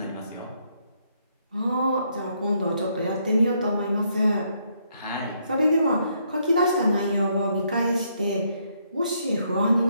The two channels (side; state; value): both; inverted; correlation -0.73